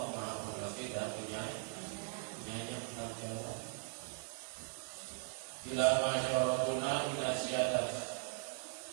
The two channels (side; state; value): left; silent; 51 dB below the other